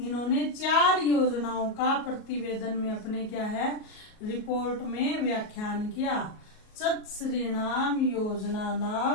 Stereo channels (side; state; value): right; late; 38 ms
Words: 4 योजनाओं का प्रतिवेदन में अपने क्या है रिपोर्ट में व्याख्यान किया। चतुस्रीणाम